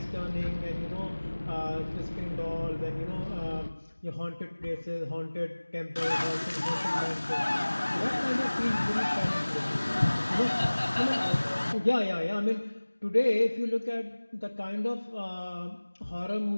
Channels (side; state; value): both; inverted; correlation -1.00